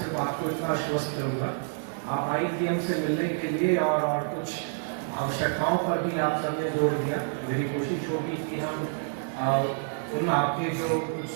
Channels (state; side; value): silent; left; 59 dB below the other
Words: आपको इतना आश्वस्त करूँगा, आप ITM से मिलने के लिए और कुछ आवश्यकताओं पर भी आप सबने जोड़ दिया। मेरी कोशिश होगी कि हम उन आपके जो कुछ